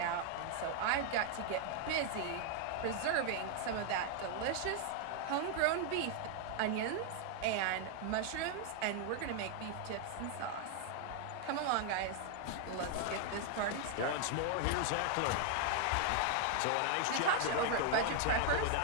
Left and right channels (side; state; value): both; different; correlation 0.00